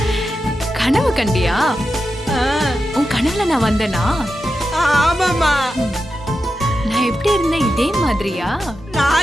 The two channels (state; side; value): normal; both; correlation 0.90